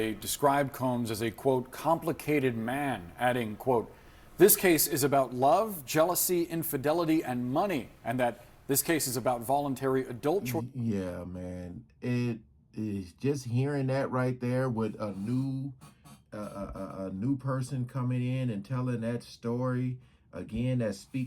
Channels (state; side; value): identical; both; correlation 1.00